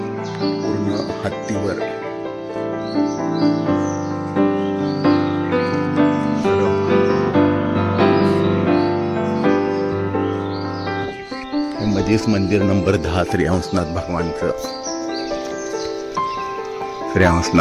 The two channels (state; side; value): identical; both; correlation 1.00